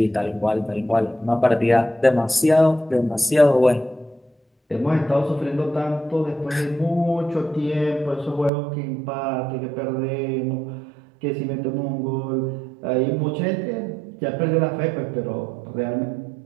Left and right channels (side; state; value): left; drops out; at 8.5 s